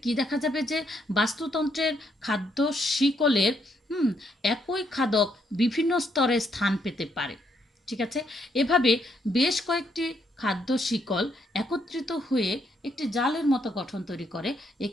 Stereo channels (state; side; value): normal; both; correlation 0.74